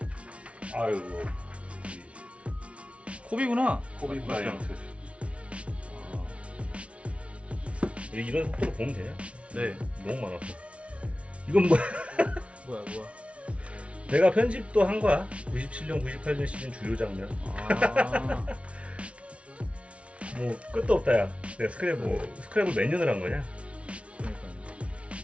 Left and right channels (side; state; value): left; late; 0.062 ms